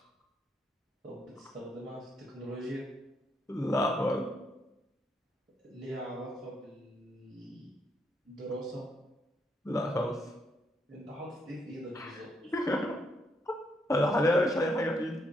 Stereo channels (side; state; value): both; normal; correlation 0.76